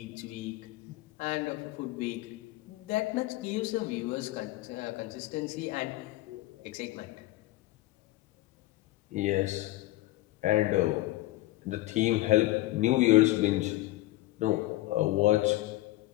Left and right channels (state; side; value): quieter; right; 17.5 dB